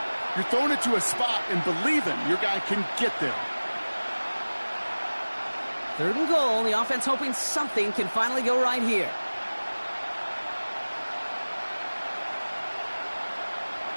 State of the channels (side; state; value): both; inverted; correlation -1.00